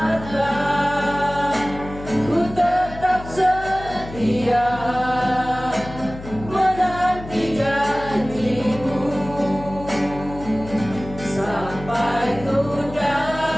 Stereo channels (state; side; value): noise; left; hum, 13 dB below the sound